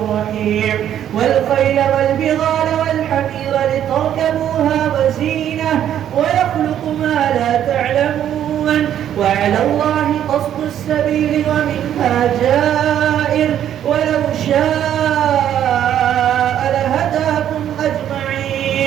رحيم. والخيل والبغال والحمير لتركبوها وزينة ويخلق ما لا تعلمون وعلى الله قصد السبيل ومنها جائر ولو شاء لهداكم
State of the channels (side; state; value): left; quieter; 10.5 dB